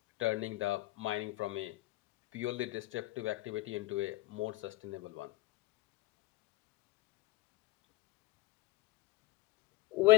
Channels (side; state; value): right; quieter; 19.1 dB